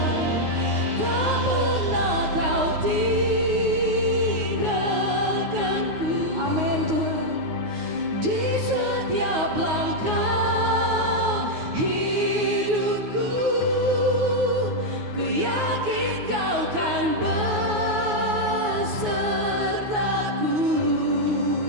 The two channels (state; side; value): late; left; 9.5 ms